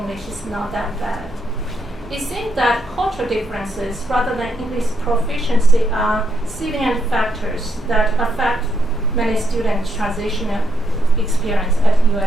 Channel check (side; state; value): both; normal; correlation 0.78